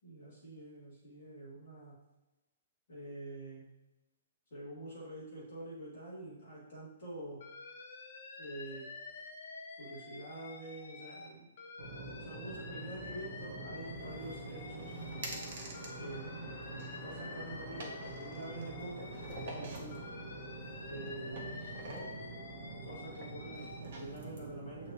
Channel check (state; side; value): inverted; both; correlation -0.50